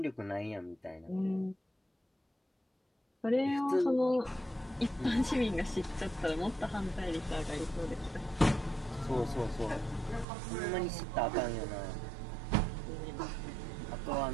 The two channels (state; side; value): drops out; left; at 10.2 s